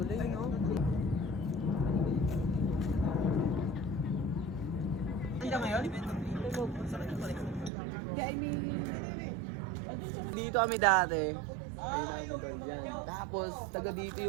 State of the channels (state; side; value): drops out; left; at 7.7 s